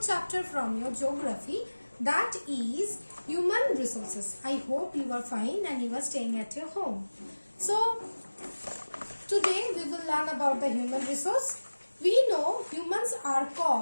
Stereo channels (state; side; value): inverted; both; correlation -1.00